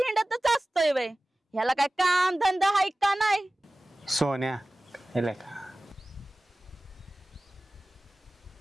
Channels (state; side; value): normal; both; correlation 0.97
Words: हिंडतच असतोय वय. ह्याला काय काम धंदा हाय का नाही? सोन्या, हेला का